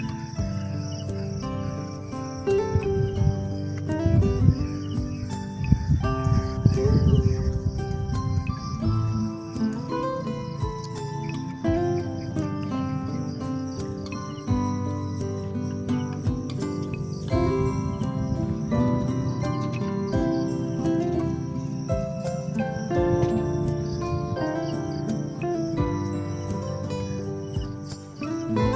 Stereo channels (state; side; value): identical; both; correlation 1.00